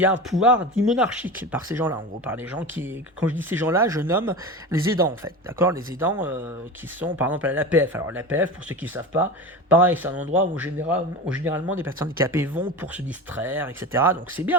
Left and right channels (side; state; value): both; normal; correlation 0.28